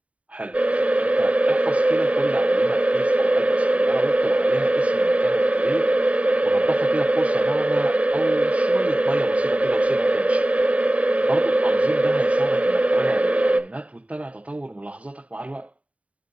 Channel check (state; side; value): late; left; 0.066 ms